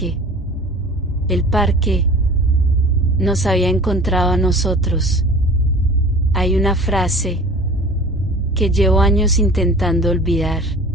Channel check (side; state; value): both; normal; correlation 0.42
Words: El parque nos había encontrado a nosotros. Hay una frase que llevo años intentando olvidar,